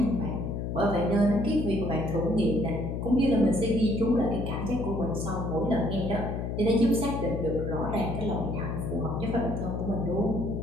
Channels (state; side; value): noise; left; hum, 3 dB below the sound